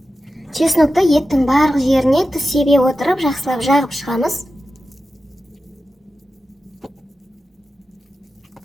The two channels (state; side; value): normal; both; correlation 0.92